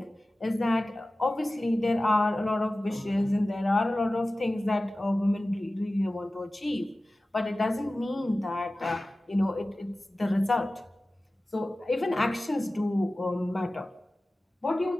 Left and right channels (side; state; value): both; normal; correlation 0.96